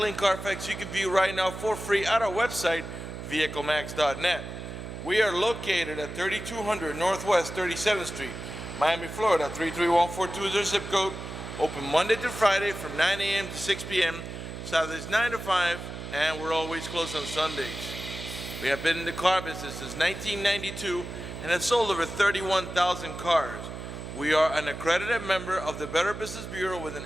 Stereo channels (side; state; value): right; noise; hum, 9 dB below the sound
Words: Carfax you can view right now for free at our website, vehiclemax.net. We are located at 3200 Northwest 37th Street, Miami, Florida, 33142 is our zip code. Open Monday through Friday from 9 a.m. to 6 p.m., Saturdays 9 to 5, and we're always closed on Sundays. We have been in the car business since 1992 and have sold over 31,000 cars. We are an accredited member of the Better Business Bureau with an